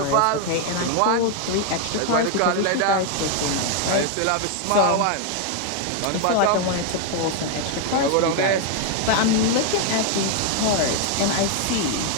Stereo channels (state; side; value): different; both; correlation 0.01